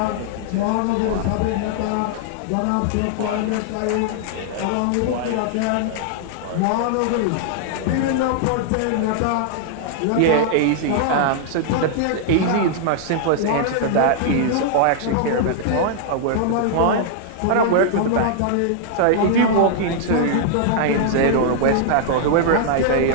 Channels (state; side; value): different; both; correlation -0.01